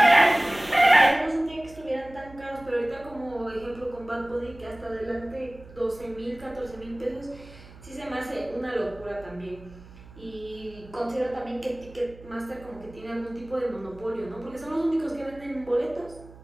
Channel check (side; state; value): right; noise; hum, 19 dB below the sound